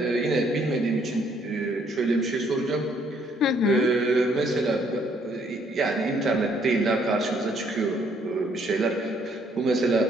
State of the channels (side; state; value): both; normal; correlation 0.66